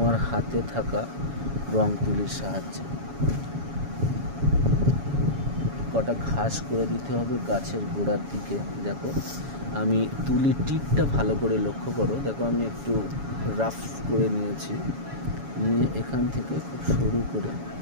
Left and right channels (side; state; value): left; late; 7.2 ms